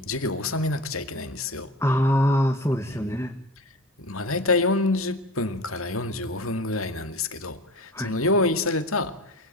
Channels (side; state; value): both; normal; correlation 0.33